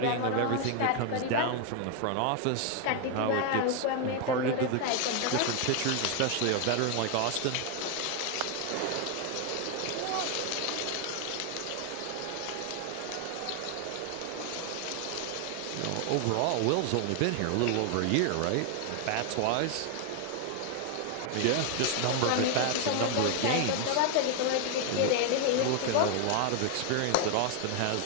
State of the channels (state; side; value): different; both; correlation 0.00